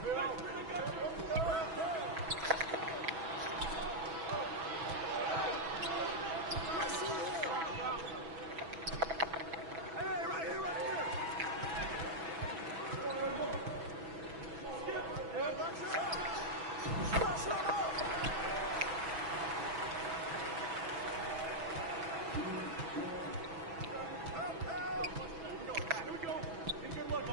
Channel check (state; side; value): late; left; 6.1 ms